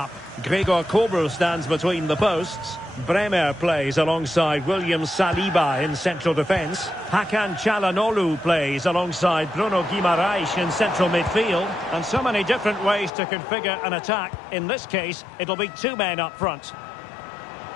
Gregor Kobel stands between the posts. Bremer plays alongside William Saliba in central defence. Hakan Çalhanoğlu plays alongside Bruno Guimaraes in central midfield. And so many different ways to configure an attack. In this case, it'll be two men up front.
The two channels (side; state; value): right; drops out; at 13.1 s